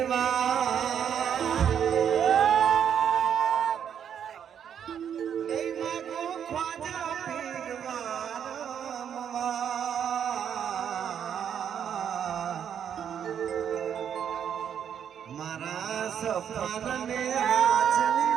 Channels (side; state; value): left; quieter; 8.6 dB